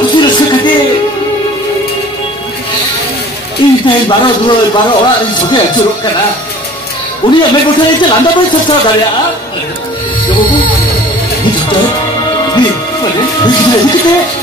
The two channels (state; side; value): normal; both; correlation 0.47